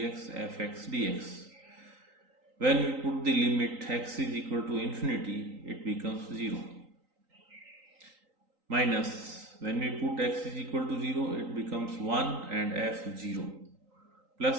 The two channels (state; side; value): late; left; 3.9 ms